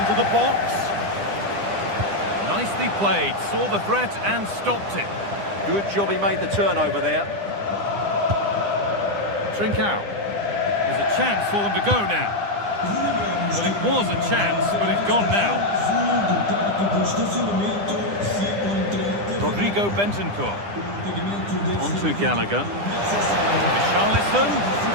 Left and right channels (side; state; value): left; late; 9.9 ms